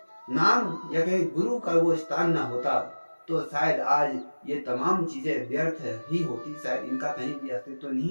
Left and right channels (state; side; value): inverted; both; correlation -1.00